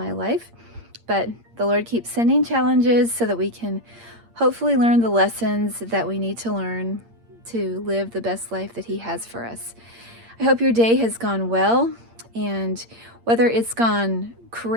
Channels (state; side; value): late; left; 8.7 ms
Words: life. But the Lord keeps sending challenges so that we can hopefully learn the lessons that we need to learn to live the best life that He has for us. I hope your day has gone well, and whether it's gone